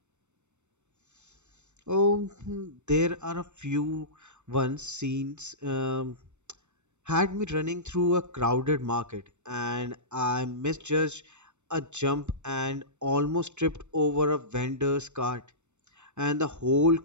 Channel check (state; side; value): late; left; 0.83 ms